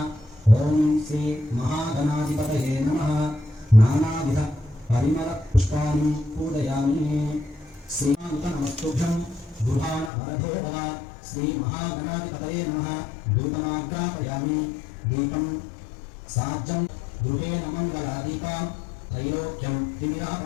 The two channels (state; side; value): drops out; right; at 10.1 s